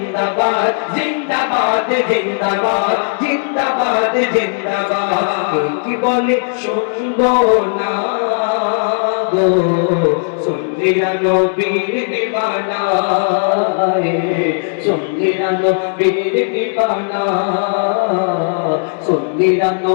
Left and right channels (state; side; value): silent; right; digital silence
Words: জিন্দাবাদ জিন্দাবাদ, জিন্দাবাদ জিন্দাবাদ। কি বলে শুনবো না গো, সন্ধিরা নবীর দিবানা, সন্ধিরা নবীর দিবানা, সন্ধিরা